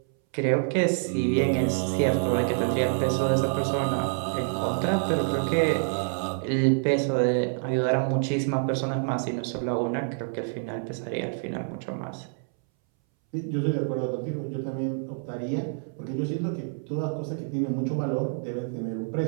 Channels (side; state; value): left; silent; 60 dB below the other